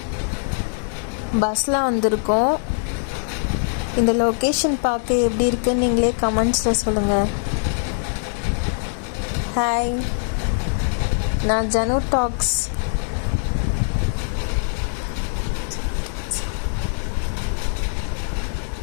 பஸ்ஸில் வந்திருக்கோம். இந்த லொக்கேஷன் பார்க்க எப்படி இருக்குன்னு நீங்களே கமெண்ட்ஸில் சொல்லுங்கள். ஹாய், நான் ஜனு டாக்ஸ்.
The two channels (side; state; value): right; silent; 64 dB below the other